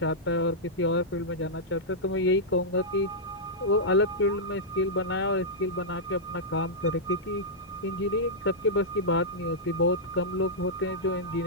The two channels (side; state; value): both; normal; correlation -0.10